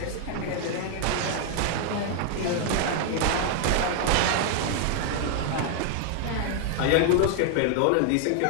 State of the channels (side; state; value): both; different; correlation 0.00